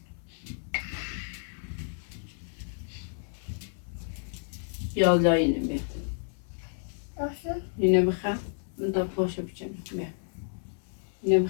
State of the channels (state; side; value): silent; right; 57 dB below the other